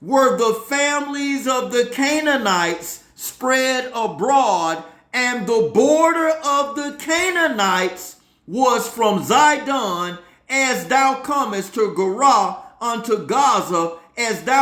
were the families of the Canaanites spread abroad, and the border of the Canaanites was from Zidon, as thou comest to Gerar unto Gaza, as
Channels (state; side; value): identical; both; correlation 1.00